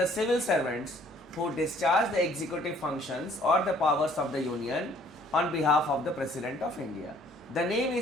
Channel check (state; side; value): normal; both; correlation 0.59